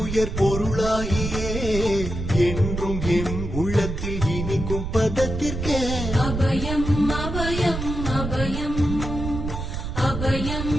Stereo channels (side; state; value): right; noise; rumble, 5 dB below the sound